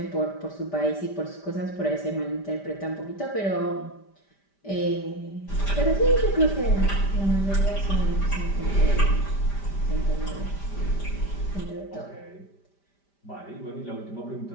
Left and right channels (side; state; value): right; late; 5.1 ms